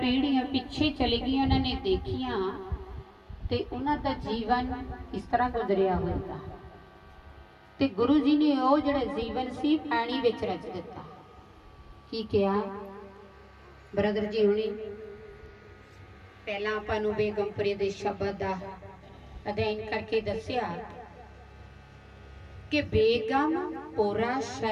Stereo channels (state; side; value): identical; both; correlation 1.00